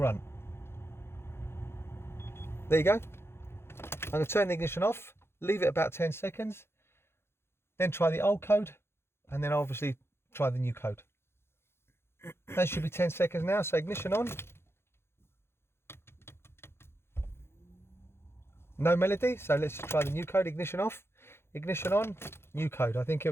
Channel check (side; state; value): right; late; 0.12 ms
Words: There you go. I'm going to turn the ignition off, leave it about 10 seconds, then try the old code, and then obviously try the new code. That should be 10 seconds now, so ignition on. No melody, so let's just try the new code. Ignition off, ignition on, new code. I think it